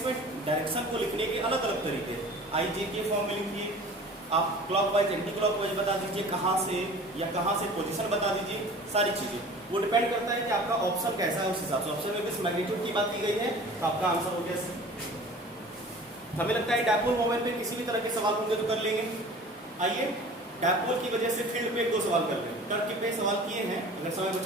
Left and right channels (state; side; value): normal; both; correlation 0.43